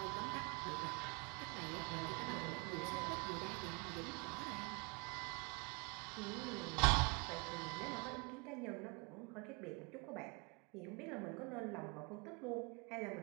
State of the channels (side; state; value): left; quieter; 31.1 dB